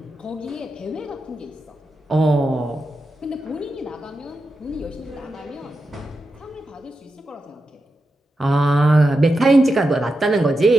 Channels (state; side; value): normal; both; correlation 0.89